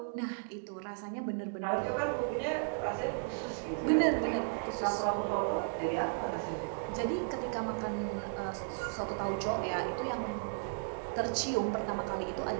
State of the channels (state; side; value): silent; left; digital silence